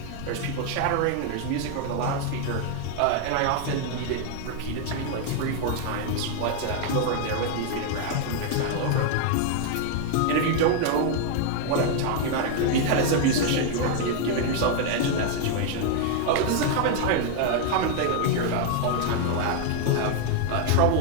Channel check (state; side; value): different; both; correlation 0.00